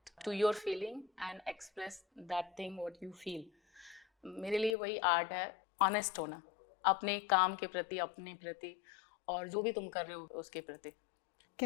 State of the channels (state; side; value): drops out; right; at 4.8 s